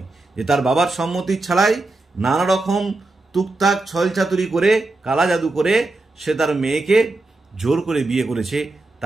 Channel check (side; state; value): left; quieter; 3.1 dB